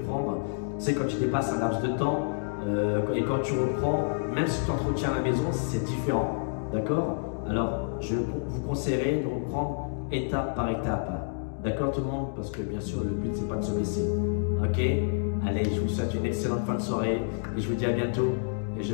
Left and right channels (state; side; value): silent; right; digital silence